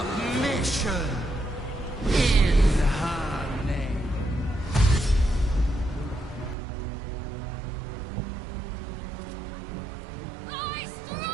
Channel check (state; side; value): drops out; left; at 6.6 s